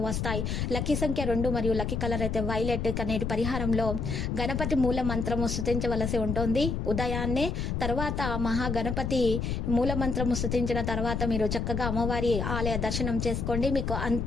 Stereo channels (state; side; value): noise; left; rumble, 1 dB below the sound